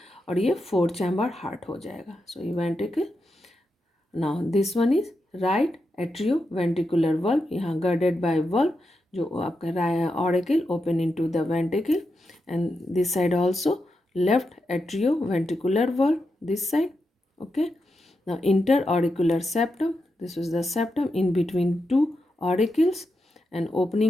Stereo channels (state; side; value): normal; both; correlation 0.87